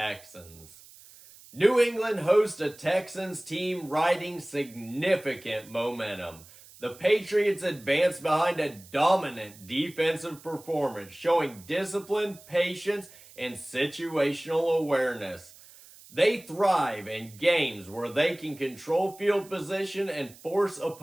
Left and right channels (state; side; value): noise; right; hiss, 22 dB below the sound